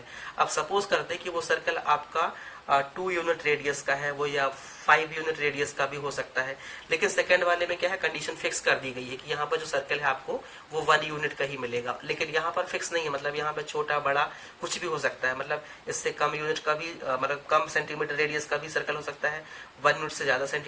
अब सपोज करते हैं कि वो सर्कल आपका 2 यूनिट रेडियस का है वो, या 5 यूनिट रेडियस का भी हो सकता है। लेकिन सेकंड वाले में क्या है, कंडीशन फिक्स कर दी गई है कि यहाँ पर जो सर्कल है आपको वो 1 यूनिट का ही मिलेगा। लेकिन यहाँ पर फिक्स नहीं है, मतलब यहाँ पर छोटा बड़ा कुछ भी हो सकता है, मतलब इससे कम यूनिट का भी, मतलब कम सेंटीमीटर रेडियस का भी सर्कल हो सकता है, 1 यूनिट से ज्यादा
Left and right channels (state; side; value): identical; both; correlation 1.00